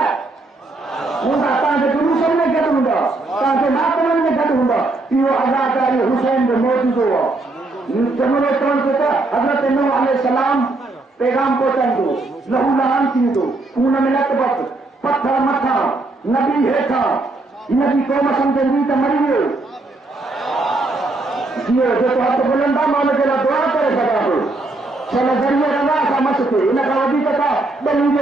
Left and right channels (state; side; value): quieter; left; 3.1 dB